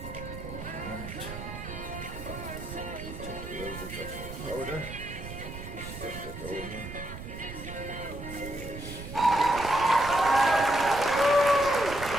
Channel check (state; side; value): noise; right; rumble, 10 dB below the sound